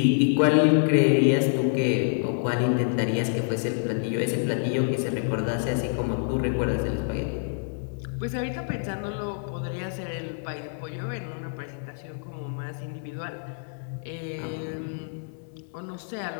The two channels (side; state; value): right; silent; 60 dB below the other